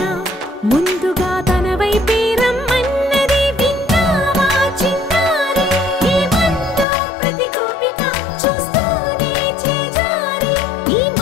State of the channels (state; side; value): drops out; right; at 6.9 s